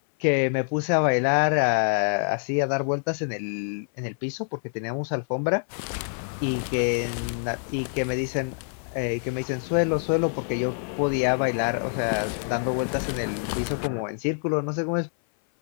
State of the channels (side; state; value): right; silent; 58 dB below the other